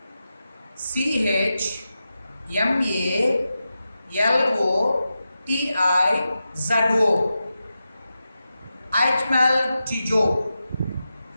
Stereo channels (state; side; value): inverted; both; correlation -0.91